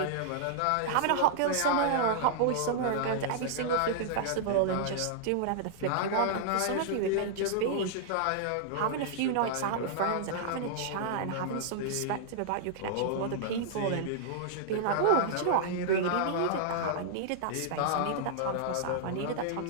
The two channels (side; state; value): both; different; correlation -0.01